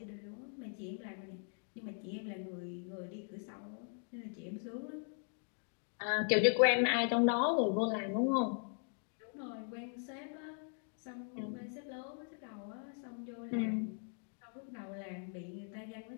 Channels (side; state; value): right; silent; 51 dB below the other